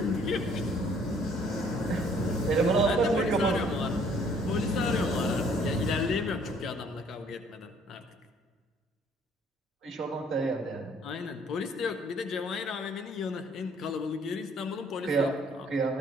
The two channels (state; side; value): normal; both; correlation 0.60